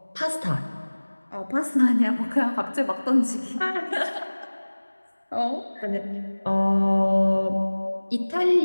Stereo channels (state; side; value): inverted; both; correlation -1.00